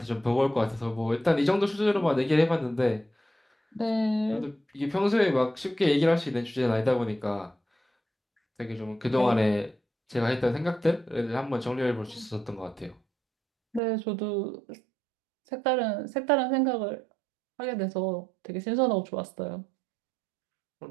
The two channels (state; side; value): drops out; left; at 13.8 s